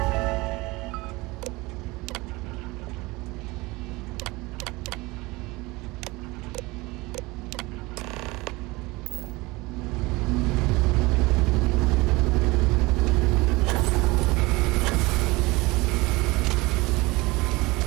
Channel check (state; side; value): quieter; left; 22.5 dB